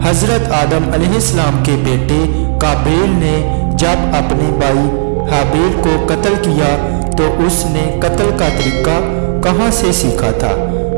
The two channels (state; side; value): silent; left; digital silence